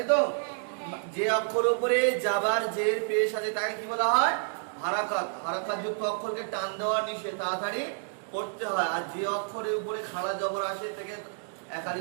তো। যে অক্ষরের উপরে যাবার জের পেশ আছে তাকে কি বলা হয়? হারাকাত। হারাকাত যুক্ত অক্ষরকে টান দেওয়া নিষেধ, তাড়াতাড়ি পড়তে হয়। আর যে অক্ষরের উপরে খাড়া জবর আসে তাকে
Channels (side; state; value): left; silent; digital silence